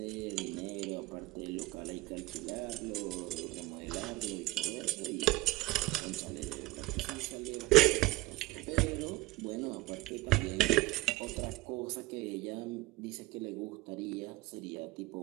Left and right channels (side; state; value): left; quieter; 19.8 dB